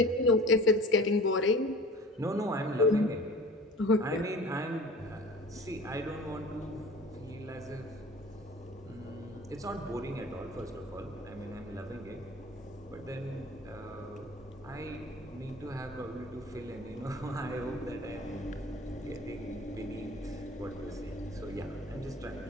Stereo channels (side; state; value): both; normal; correlation 0.42